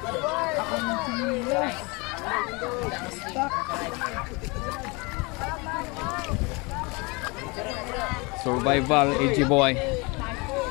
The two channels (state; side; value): quieter; right; 27.6 dB